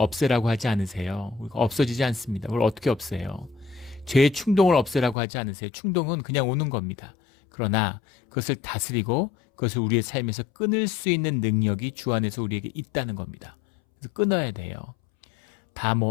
하지 않으세요. 없어지지 않습니다. 그걸 어떻게 없애요? 죄의 충동을 없애라고 하지 않으세요. 충동은 그냥 오는 겁니다. 그러나 그것을 다스리고 그것을 우리의 삶에서 끊을 수 있는 능력이 주 안에서 우리에게 있다는 겁니다. 그래서 끊어야 돼요. 다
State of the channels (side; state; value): right; drops out; at 5.2 s